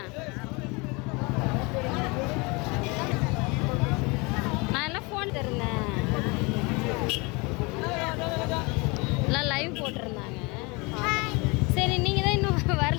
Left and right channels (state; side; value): quieter; right; 27.4 dB